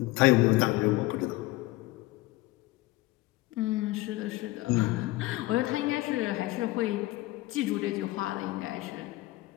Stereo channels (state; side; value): quieter; right; 19.2 dB